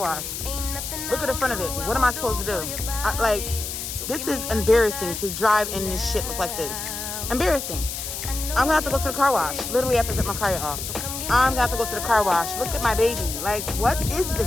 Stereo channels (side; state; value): left; noise; hiss, 6 dB below the sound